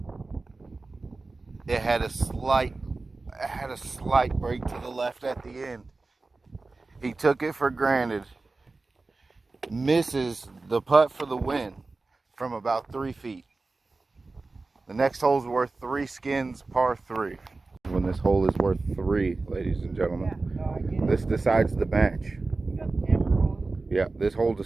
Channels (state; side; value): quieter; left; 3.6 dB